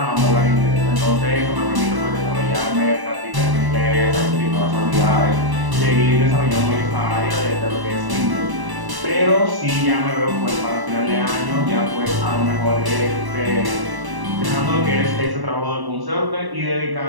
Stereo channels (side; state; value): left; late; 1.0 ms